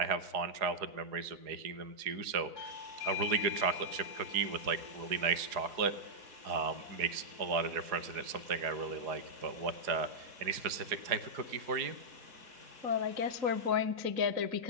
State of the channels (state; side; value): late; left; 4.8 ms